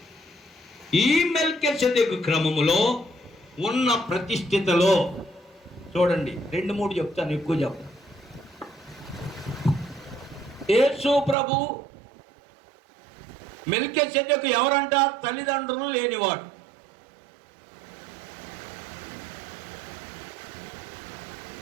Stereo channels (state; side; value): drops out; left; at 11.4 s